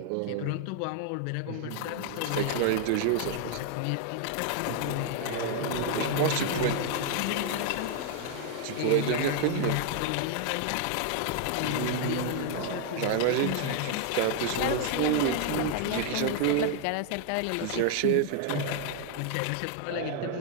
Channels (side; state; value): both; different; correlation 0.00